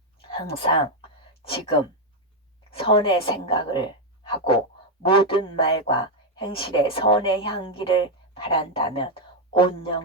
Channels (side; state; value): both; normal; correlation 0.03